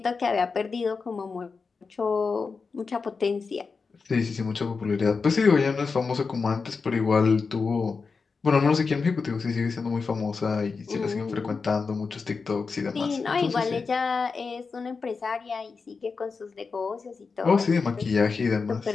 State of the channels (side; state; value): right; quieter; 4.8 dB